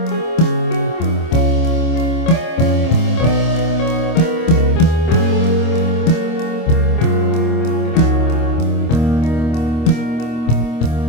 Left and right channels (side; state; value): right; late; 25 ms